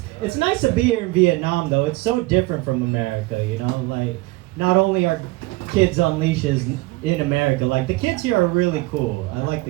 nice to be here in Vietnam, though. It's so different from America, you know? Like, not only are kids on leashes in America, like, the kids here are really cool. I like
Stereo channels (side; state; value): left; quieter; 21.4 dB